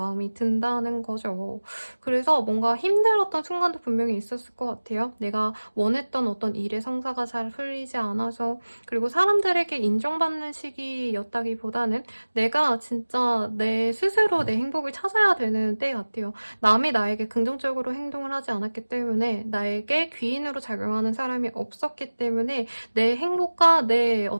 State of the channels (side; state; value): both; inverted; correlation -1.00